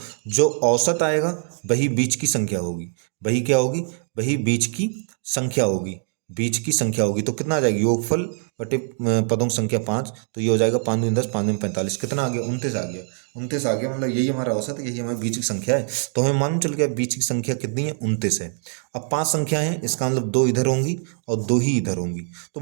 जो औसत आएगा वही बीच की संख्या होगी, वही क्या होगी, वही बीच की संख्या होगी, बीच की संख्या होगी। तो कितना आ जाएगी, योगफल बटे पदों की संख्या 5, तो ये हो जाएगा 5 दूनी 10, 5 दूनी 45, कितना आ गया 29 आ गया, 29 आ गया। मतलब यही हमारा औसत है, यही हमारी बीच की संख्या है। तो हमें मालूम चल गया बीच की संख्या कितनी है, 29 है। अब 5 संख्या है, इसका मतलब 2 इधर होंगी और 2 ही इधर होंगी, तो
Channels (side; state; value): left; silent; 56 dB below the other